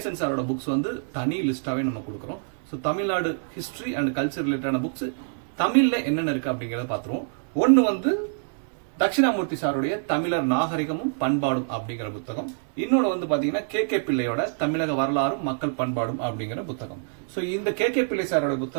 சாரோட புக்ஸ் வந்து தனி லிஸ்டாவே நம்ம கொடுக்குறோம். So Tamil Nadu history and culture ரிலேட்டடான புக்ஸ் தமிழ்ல என்னென்ன இருக்கு அப்படிங்கறத பாத்துருவோம். ஒன்னு வந்து தட்சிணாமூர்த்தி சாருடைய தமிழர் நாகரிகமும் பண்பாடும் அப்படிங்கிற புத்தகம். இன்னொன்னு வந்து பாத்தீங்கன்னா கே பிள்ளையோட தமிழக வரலாறும் மக்கள் பண்பாடும் அப்படிங்கிற புத்தகம். ஸோ இந்த கே பிள்ளை சாரோட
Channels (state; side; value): silent; left; digital silence